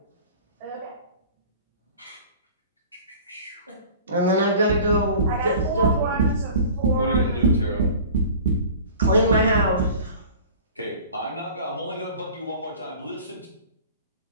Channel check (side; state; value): both; inverted; correlation -0.42